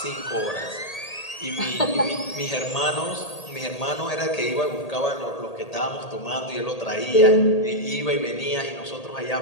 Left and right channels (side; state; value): right; late; 1.8 ms